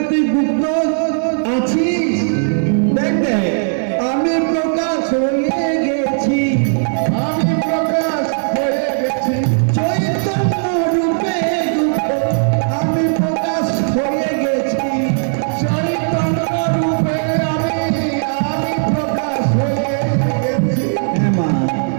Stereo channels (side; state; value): left; silent; 68 dB below the other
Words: তুই গুপ্ত আছিস। দেখ দেখ, আমি প্রকাশ হয়ে গেছি, আমি প্রকাশ হয়ে গেছি। চৈতন্য রূপে গুপ্ত আমি প্রকাশ হয়ে গেছি। চৈতন্য রূপে আমি